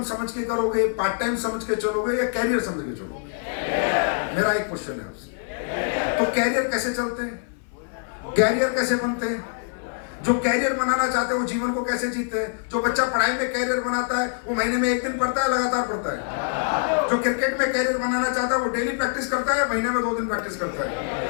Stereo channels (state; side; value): silent; right; 58 dB below the other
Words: समझ के करोगे, पार्ट टाइम समझ के चलोगे, या कैरियर समझ के चलोगे? मेरा एक क्वेश्चन है आपसे। तो कैरियर कैसे चलते हैं, कैरियर कैसे बनते हैं? जो कैरियर बनाना चाहते हैं वो जीवन को कैसे जीते हैं? जो बच्चा पढ़ाई में कैरियर बनाता है वो महीने में एक दिन पढ़ता है, लगातार पढ़ता है। जो क्रिकेट में कैरियर बनाना चाहता है वो डेली प्रैक्टिस करता है, महीने में 2 दिन प्रैक्टिस करता